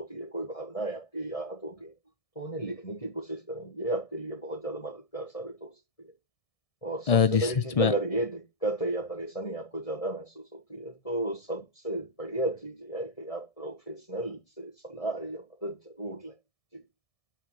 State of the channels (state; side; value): late; right; 1.7 ms